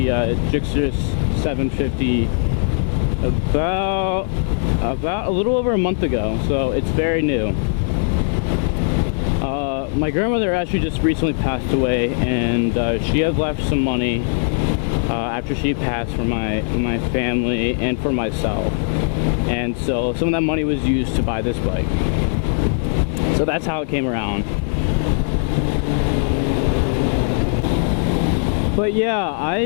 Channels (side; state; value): right; silent; 59 dB below the other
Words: S40 750 about a little over a month ago, so it's very new. My grandmother actually just recently passed away, and she had left some money after she passed for my family and for myself, and so some of that money was used to buy this bike. So that's how it came around. But yeah, I